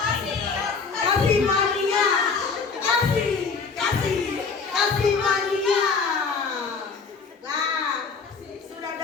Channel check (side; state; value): right; quieter; 5.1 dB